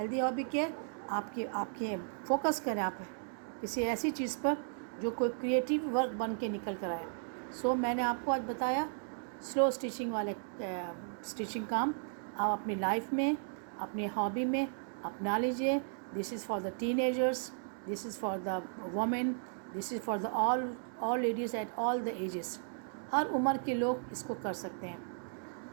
hobby क्या है? आपकी फोकस करें आप किसी ऐसी चीज़ पर जो कोई क्रिएटिव वर्क बन के निकल कर आए। सो मैंने आपको आज बताया स्लो स्टिचिंग वाले स्टिचिंग काम आप अपनी लाइफ में, अपनी हॉबी में अपना लीजिए। This is for the teenagers, this is for the women, this is for the all ladies at all the ages. हर उम्र के लोग इसको कर सकते हैं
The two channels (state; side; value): silent; left; digital silence